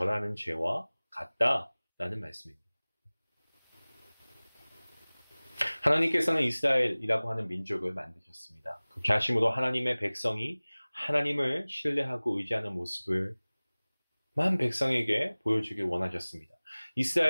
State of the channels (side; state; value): both; inverted; correlation -1.00